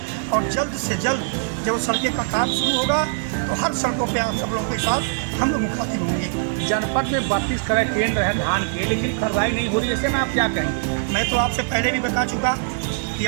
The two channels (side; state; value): left; silent; digital silence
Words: और जल्द से जल्द जब सड़कें का काम शुरू होगा तो हर सड़कों पर आप सब लोगों के साथ हम लोग मुखातिब होंगे। जनपद में 32 करोड़ ट्रेन रहे धान के, लेकिन खरीदारी नहीं हो रही, ऐसे में आप क्या कहेंगे? मैं तो आपसे पहले भी बता चुका कि